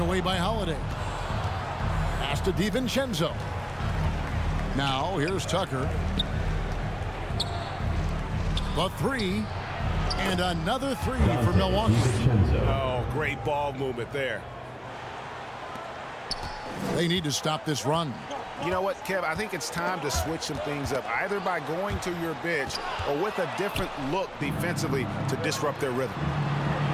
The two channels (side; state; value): both; identical; correlation 1.00